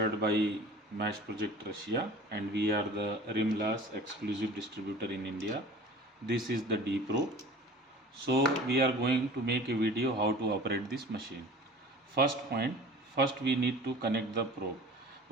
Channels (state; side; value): normal; both; correlation 0.42